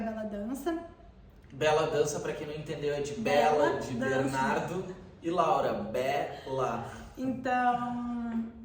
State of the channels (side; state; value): both; identical; correlation 1.00